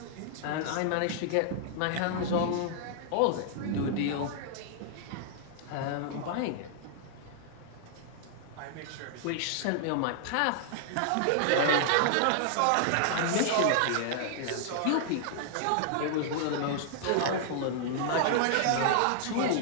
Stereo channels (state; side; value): different; both; correlation -0.01